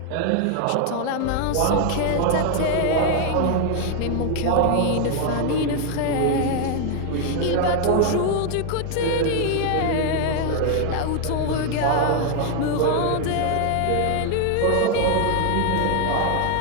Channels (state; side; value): different; both; correlation 0.00